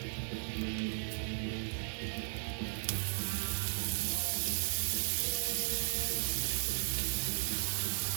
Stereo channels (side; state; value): left; silent; digital silence